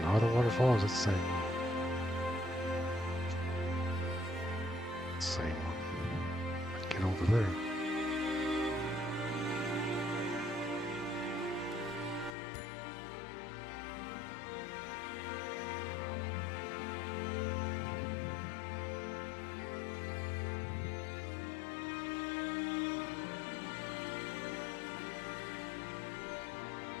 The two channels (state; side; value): drops out; right; at 12.4 s